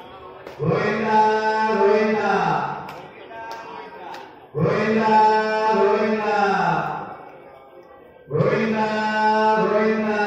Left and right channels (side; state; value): both; identical; correlation 1.00